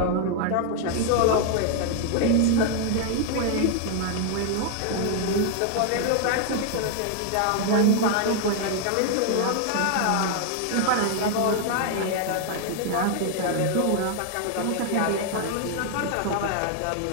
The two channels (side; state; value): both; different; correlation 0.00